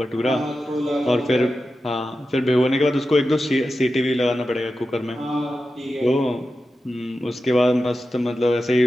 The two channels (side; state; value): both; normal; correlation 0.92